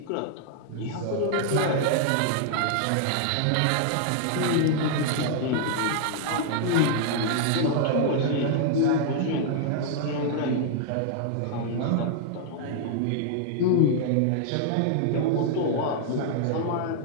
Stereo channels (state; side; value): different; both; correlation -0.01